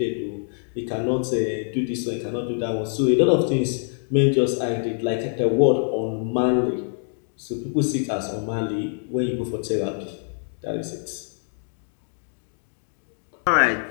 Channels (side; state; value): right; silent; digital silence